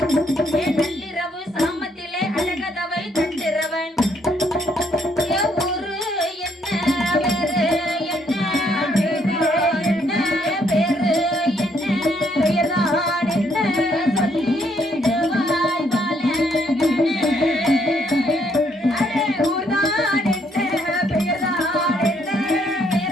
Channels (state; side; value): normal; both; correlation 0.70